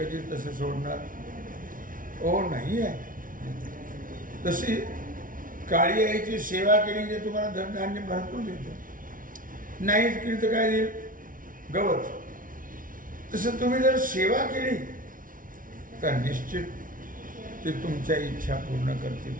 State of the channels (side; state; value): left; late; 0.39 ms